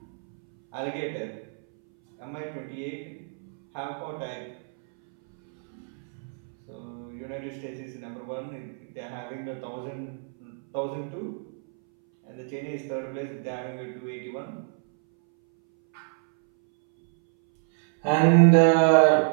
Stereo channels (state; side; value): silent; left; 59 dB below the other